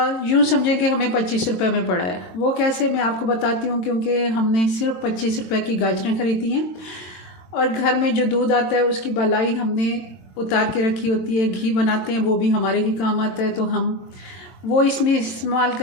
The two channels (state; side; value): late; right; 22 ms